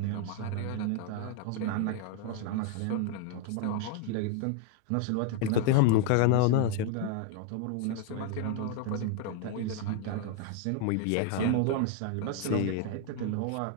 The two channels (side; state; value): both; different; correlation 0.01